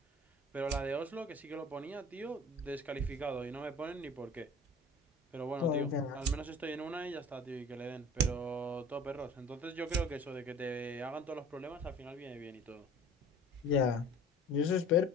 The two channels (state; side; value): normal; both; correlation 0.45